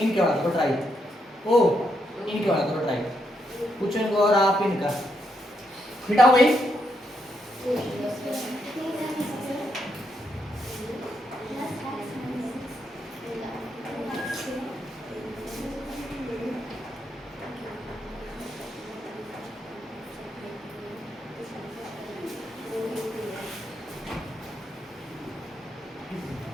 वाला करो ट्राई। ओ इनके वाला करो ट्राई, कुछ इनको और आप इनका मिटाओ भाई।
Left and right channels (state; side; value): normal; both; correlation 0.79